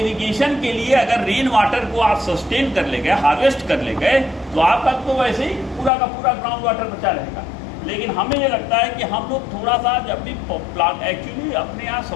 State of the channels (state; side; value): drops out; right; at 5.9 s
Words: के लिए अगर रेन वाटर को आप सस्टेन कर ले गए, हार्वेस्ट कर ले गए, तो आपका तो वैसे ही पूरा का पूरा ग्राउंड वाटर बचा रहेगा। लेकिन हमें ये लगता है कि हम लोग थोड़ा सा जब भी प्लांट, एक्चुअली अपने यहाँ